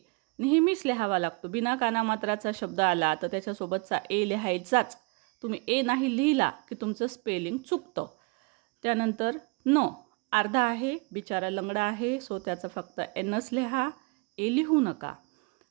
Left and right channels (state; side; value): quieter; left; 29.8 dB